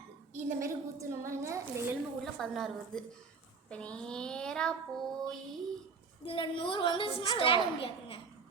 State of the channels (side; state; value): left; quieter; 4.9 dB